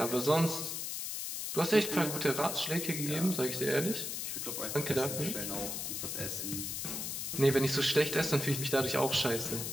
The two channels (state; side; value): noise; left; hiss, 4 dB below the sound